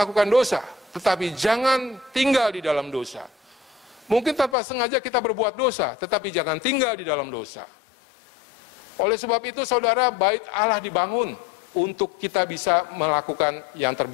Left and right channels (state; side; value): drops out; right; at 4.5 s